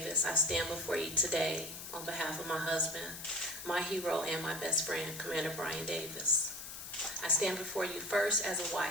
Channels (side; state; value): left; noise; hiss, 10 dB below the sound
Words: I stand before you today on behalf of my husband, my hero, and my best friend, Commander Brian Davis. I stand before you first as a